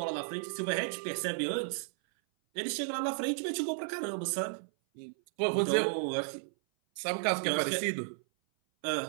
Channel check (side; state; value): left; silent; 56 dB below the other